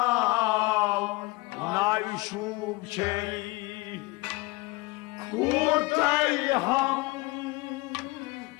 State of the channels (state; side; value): quieter; right; 23.4 dB